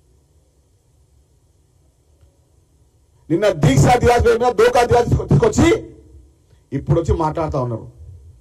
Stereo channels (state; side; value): identical; both; correlation 1.00